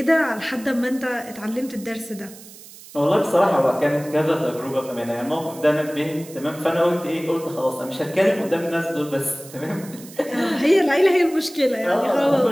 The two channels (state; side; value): noise; right; hiss, 19 dB below the sound